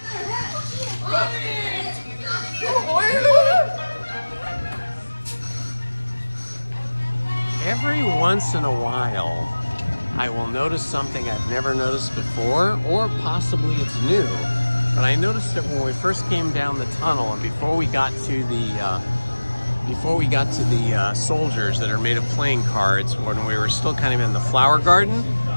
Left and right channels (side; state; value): both; inverted; correlation -1.00